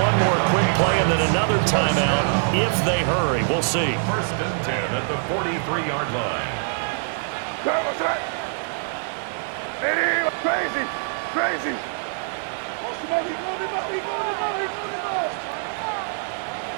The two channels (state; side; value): silent; left; digital silence